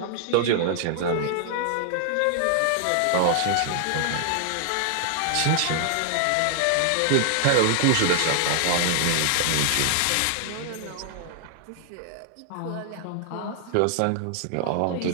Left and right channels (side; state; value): both; different; correlation 0.00